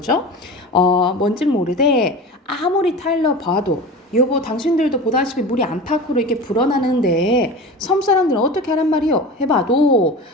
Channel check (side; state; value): both; normal; correlation 0.32